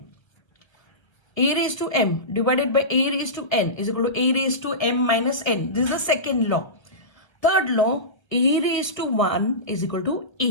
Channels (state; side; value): late; right; 1.1 ms